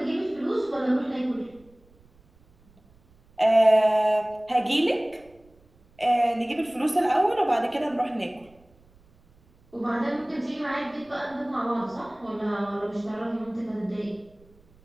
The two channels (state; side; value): noise; right; rumble, 30 dB below the sound